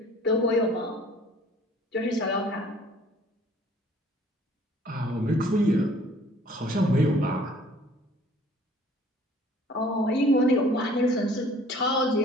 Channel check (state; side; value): normal; both; correlation 0.54